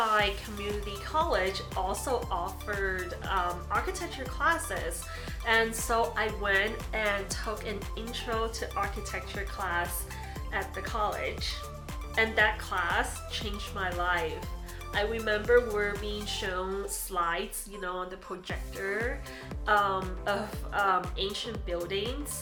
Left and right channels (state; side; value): identical; both; correlation 1.00